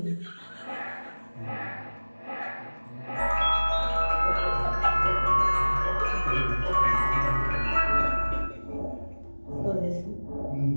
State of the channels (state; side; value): inverted; both; correlation -1.00